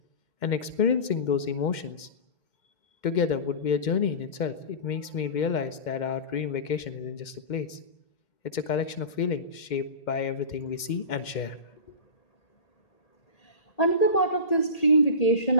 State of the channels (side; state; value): right; late; 2.1 ms